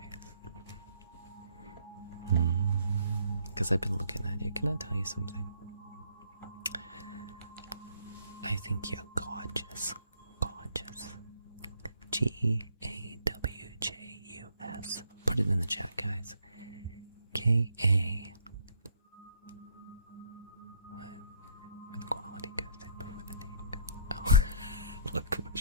Because I've been looking at you. Can I tell you something? I think you're gorgeous. Gorgeous. Gawjus. Put it in the chat, guys. K-A. When the quality goes in before the name goes. Oh,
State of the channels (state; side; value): inverted; both; correlation -0.62